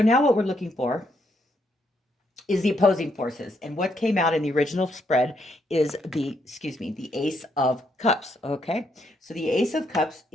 now what we're looking for is the opposing forces. And what came out in the original spread is the Ace of Cups, okay? So the Ace of Cups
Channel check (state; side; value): normal; both; correlation 0.75